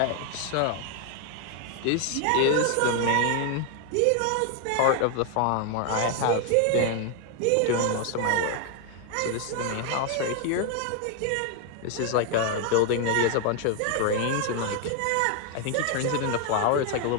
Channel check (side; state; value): both; different; correlation 0.01